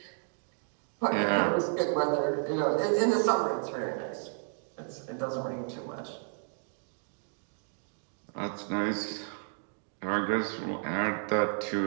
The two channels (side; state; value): left; silent; 56 dB below the other